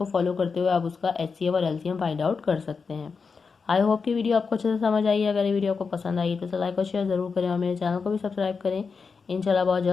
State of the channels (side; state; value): right; quieter; 5.1 dB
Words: फॉलो करते हुए आप उसका HCF और LCM फाइंड आउट कर सकते हैं। आई होप कि वीडियो आपको अच्छे से समझ आई है। अगर ये वीडियो आपको पसंद आई तो लाइक और शेयर जरूर करें और मेरे चैनल को भी सब्सक्राइब करें। इंशाल्लाह बहुत